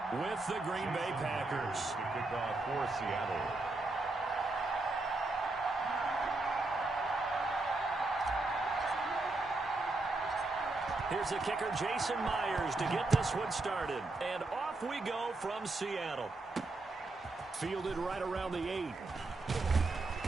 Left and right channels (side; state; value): left; quieter; 3.2 dB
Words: with the Green Bay Packers. Kickoff for Seattle. Here's the kicker, Jason Myers, to get this one started. And off we go from Seattle. Fielded right around the 8.